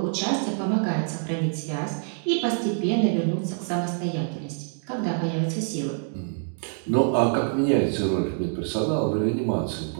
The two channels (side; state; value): left; silent; 61 dB below the other